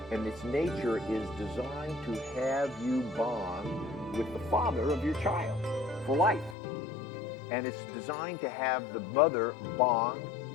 and its nature is designed to have you bond with the father of your child for life. And it's designed to have the mother bond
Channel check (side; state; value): right; drops out; at 6.6 s